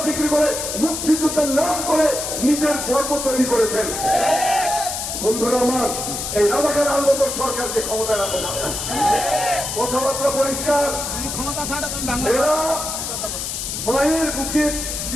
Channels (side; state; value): left; noise; hiss, 4 dB below the sound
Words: বিক্রি করে, মুক্তিযুদ্ধের নাম করে নিজের গর্ব তৈরি করেছেন। বন্ধুরা আমার, এই রাজাকার আন্দোলন সরকারকে ক্ষমতায় রাখতে পারে না। কথাবার্তা পরিষ্কার। এরা মায়ের বুকে